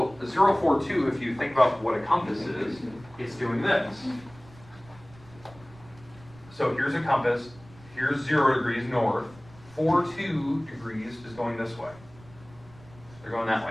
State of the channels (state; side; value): noise; right; rumble, 23 dB below the sound